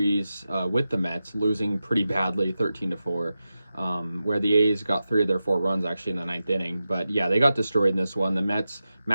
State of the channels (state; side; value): inverted; both; correlation -0.92